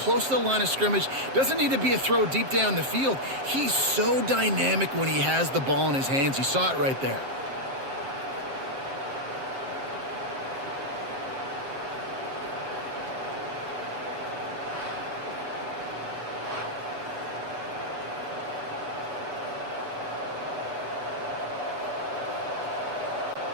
to the line of scrimmage. Doesn't need to be a throw deep down the field. He's so dynamic when he has the ball in his hands. You saw it right there.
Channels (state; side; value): late; left; 7.5 ms